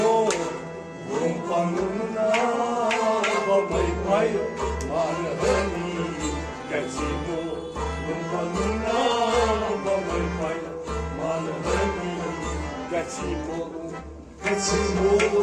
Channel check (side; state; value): both; identical; correlation 1.00